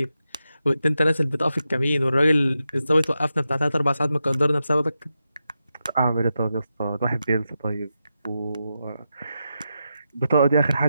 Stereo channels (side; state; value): both; inverted; correlation -0.88